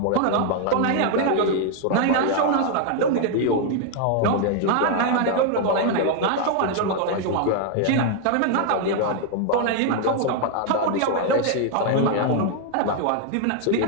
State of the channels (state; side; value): different; both; correlation 0.00